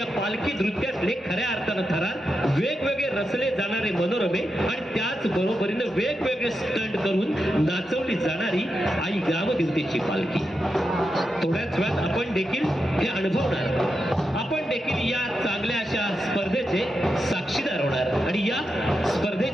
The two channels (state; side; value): normal; both; correlation 0.87